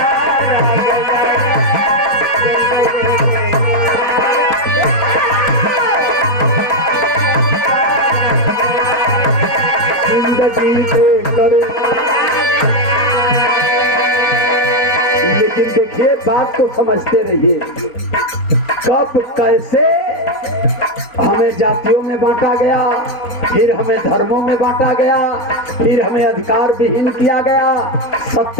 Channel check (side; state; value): right; late; 4.2 ms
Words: गया है, जिंदगी देकर। लेकिन देखिए, बात को समझते रहिए, कब कैसे हमें जातियों में बांटा गया, फिर हमें धर्मों में बांटा गया, फिर हमें अधिकार विहीन किया गया,